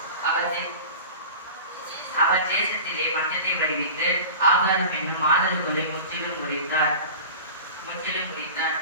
அவர் தேசத்திலே பஞ்சத்தை விளைவித்து ஆகாரம் என்னும் ஆதரவுகளை முற்றிலும் முறித்தார்.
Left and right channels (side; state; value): both; inverted; correlation -0.35